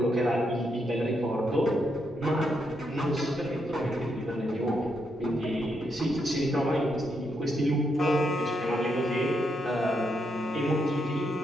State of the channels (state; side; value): normal; both; correlation 0.79